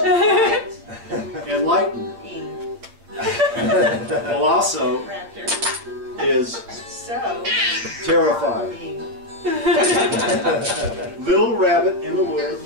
enlighten. Ing. Colosso Raptor. is So terrified. Ing. Little rabbit in the wood.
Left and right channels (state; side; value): late; left; 8.8 ms